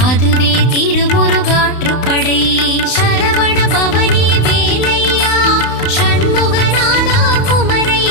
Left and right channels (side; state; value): right; late; 32 ms